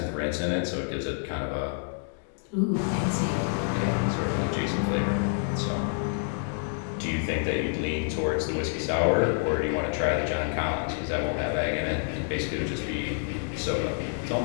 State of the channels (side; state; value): right; silent; 59 dB below the other